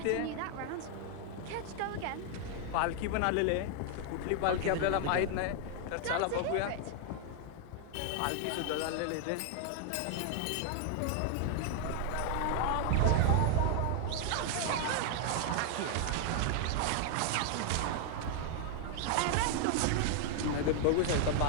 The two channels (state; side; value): different; both; correlation 0.00